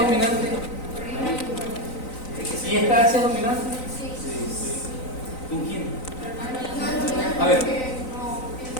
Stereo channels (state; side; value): late; right; 3.9 ms